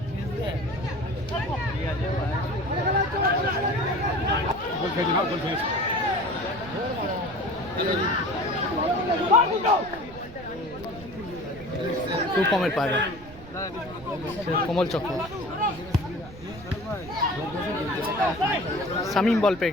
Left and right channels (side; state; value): right; noise; rumble, 18 dB below the sound